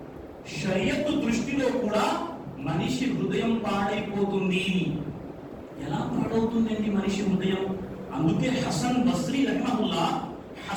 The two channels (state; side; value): identical; both; correlation 1.00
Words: షరియత్ దృష్టిలో కూడా మనిషి హృదయం పాడైపోతుంది. ఎలా పాడవుతుందండి మనిషి హృదయం? అందుకే హసన్ బస్రీ